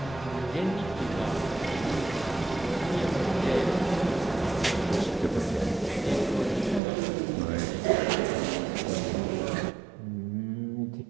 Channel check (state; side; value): drops out; left; at 6.8 s